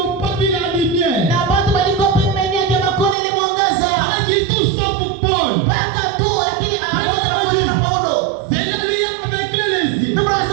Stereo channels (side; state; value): left; drops out; at 3.2 s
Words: pas vu la lumière. Na watu walikuwa pembeni yake makoni ilimwangaza. Pas du tout sauf Paul. Paka tu lakini hawakuona pamoja na Paulo. C'est là lui avec les yeux. Ndio